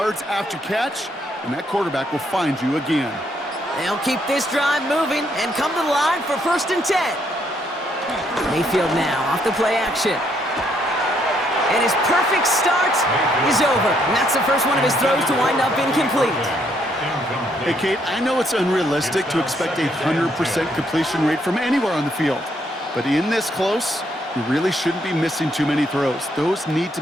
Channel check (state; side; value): normal; both; correlation 0.72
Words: after catch, and that quarterback will find you again. They'll keep this drive moving and come to the line for 1st and 10. Mayfield now off the play action. And his perfect start is over. And that's the first one of his throws to wind up incomplete. Hey, Kate, I know it's unrealistic to expect a 100% completion rate from anywhere on the field. But in this close, you really shouldn't be missing too many throws. Those need to